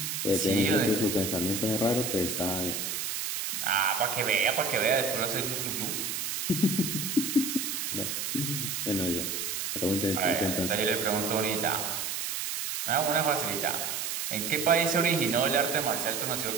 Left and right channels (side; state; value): right; noise; hiss, 3 dB below the sound